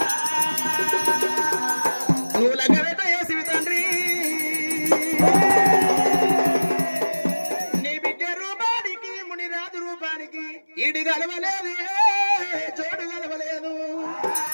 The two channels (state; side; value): inverted; both; correlation -1.00